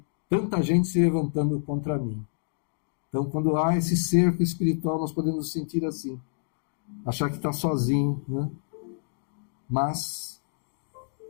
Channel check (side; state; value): right; silent; digital silence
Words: tanta gente se levantando contra mim. Então, quando há esse cerco espiritual, nós podemos nos sentir assim. Achar que está sozinho, né? Mas,